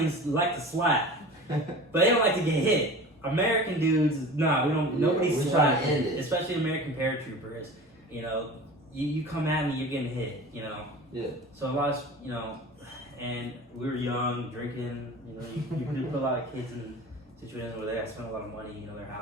like to slap, but they don't like to get hit. American dudes, we don't. Nobody slaps, especially American paratroopers. You come at me, you're getting hit. Yeah. So a lot of and we were young, drinking. You put a lot of kids in situations where they have to spend a lot of money. Their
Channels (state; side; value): normal; both; correlation 0.37